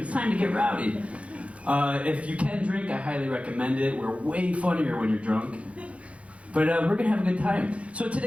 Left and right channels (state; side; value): late; left; 0.063 ms